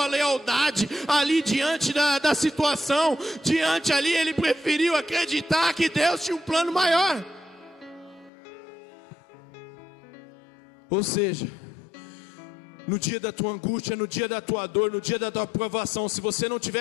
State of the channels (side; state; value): right; drops out; at 8.3 s